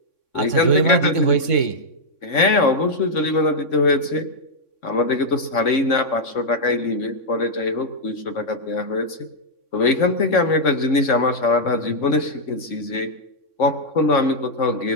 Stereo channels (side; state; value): right; late; 3.6 ms